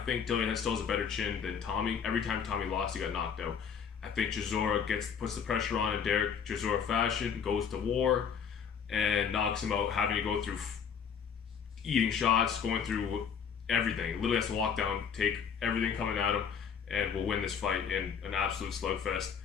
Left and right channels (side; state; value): right; quieter; 7.1 dB